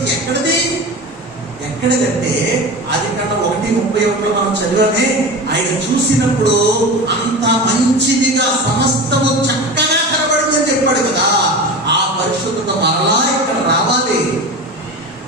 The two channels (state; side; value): normal; both; correlation 0.29